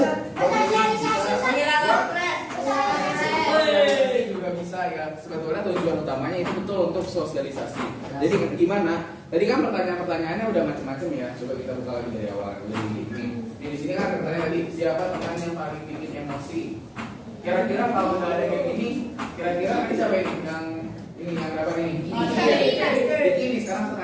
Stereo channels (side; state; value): both; identical; correlation 1.00